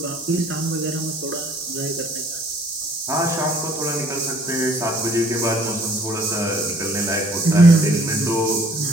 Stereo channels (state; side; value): normal; both; correlation 0.58